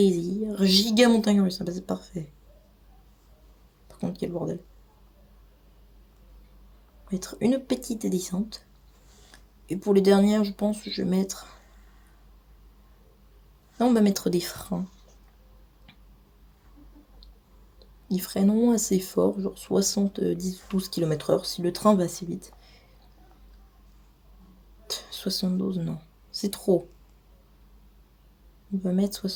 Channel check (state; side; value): identical; both; correlation 1.00